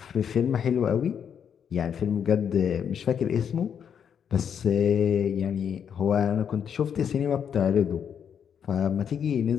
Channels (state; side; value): quieter; right; 7.9 dB